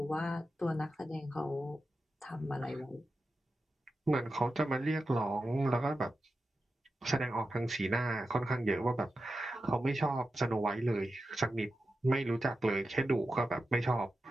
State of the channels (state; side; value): normal; both; correlation 0.91